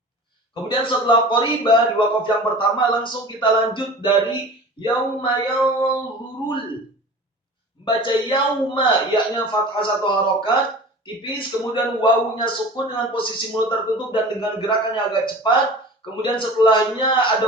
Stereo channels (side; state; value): both; normal; correlation 0.39